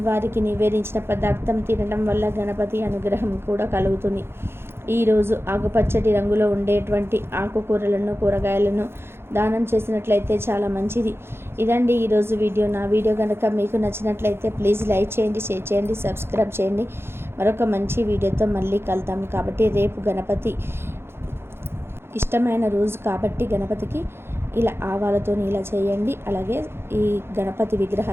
నివేదించిన పదార్థం తినడం వల్ల గణపతి అనుగ్రహం కూడా కలుగుతుంది. ఈరోజు ఆకుపచ్చటి రంగులో ఉండేటువంటి ఆకుకూరలను కూరగాయలను దానం చేసినట్లయితే చాలా మంచిది. ఇదండి ఈరోజు వీడియో. నా వీడియో కనుక మీకు నచ్చినట్లయితే ప్లీజ్ లైక్ చేయండి, షేర్ చేయండి, సబ్స్క్రైబ్ చేయండి. మరొక మంచి వీడియోతో మళ్ళీ కలుద్దాం. కాబట్టి రేపు గణపతి ఇష్టమైన రోజు కాబట్టి గణపతికి ఇలా ఆవాలతో ఇలా చేయండి. అలాగే ఈ గణపతి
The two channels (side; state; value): left; late; 0.12 ms